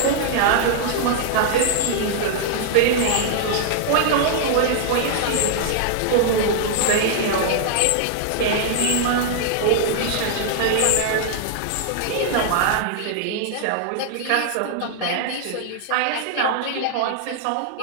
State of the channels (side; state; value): both; different; correlation 0.00